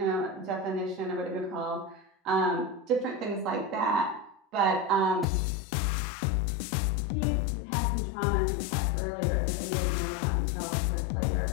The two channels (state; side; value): drops out; right; at 5.2 s